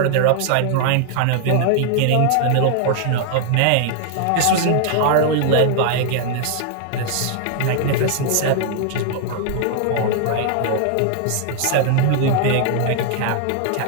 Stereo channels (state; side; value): different; both; correlation 0.00